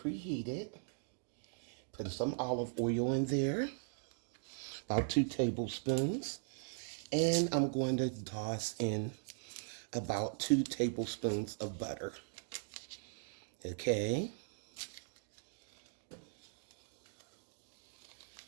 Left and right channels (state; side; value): silent; left; digital silence